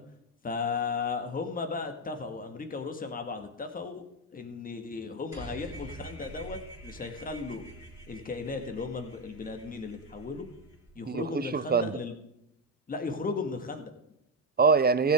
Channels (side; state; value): both; normal; correlation 0.06